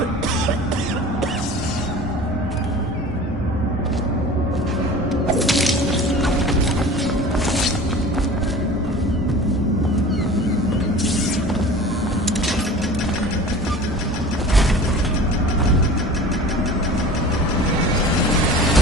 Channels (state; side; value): normal; both; correlation 0.40